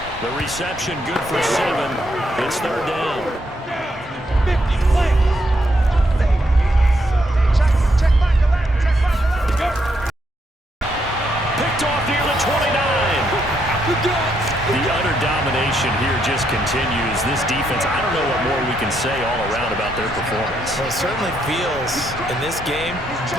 The reception good for 7. It's 3rd down. 50, play. Check back the left. Check back the left. Picked off near the 29. The utter domination here just continues. This defense, I don't know what more we can say all around about their performance. Well, it certainly feels in this game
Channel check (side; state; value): both; normal; correlation 0.77